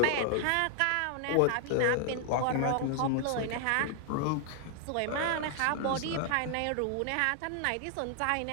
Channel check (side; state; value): both; different; correlation 0.00